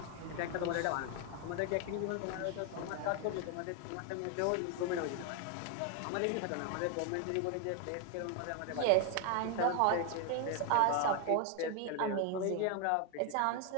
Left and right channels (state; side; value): different; both; correlation 0.01